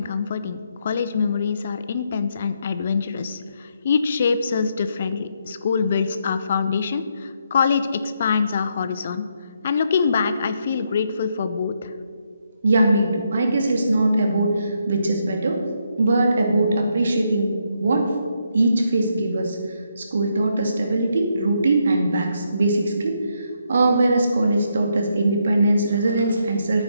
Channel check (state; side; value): inverted; both; correlation -0.77